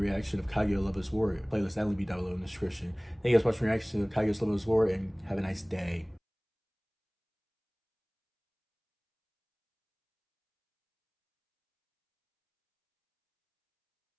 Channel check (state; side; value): identical; both; correlation 1.00